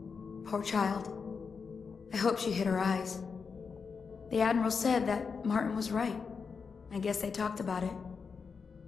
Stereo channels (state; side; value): quieter; right; 5.5 dB